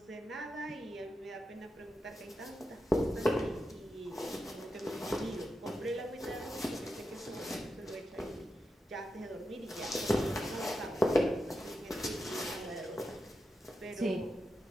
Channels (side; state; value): both; normal; correlation 0.88